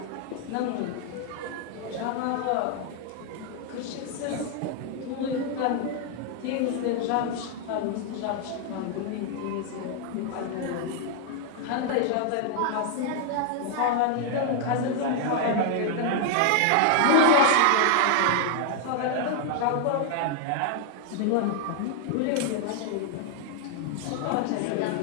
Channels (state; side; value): different; both; correlation 0.00